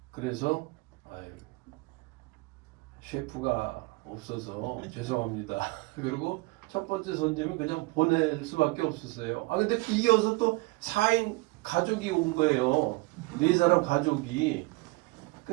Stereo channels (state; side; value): quieter; left; 24.4 dB